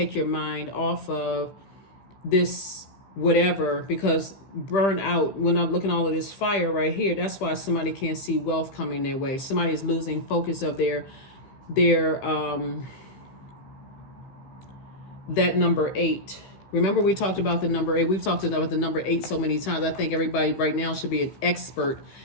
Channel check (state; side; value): late; right; 15 ms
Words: your mind off of this whatever, because burn out, when I'm looking at all of this fire right here, that's why somebody can't see wealth coming their way. Somebody is losing focus of their that number 8. Remember we talked about the number 8. We've talked about the number 8 so many times. I think everybody right now should be an expert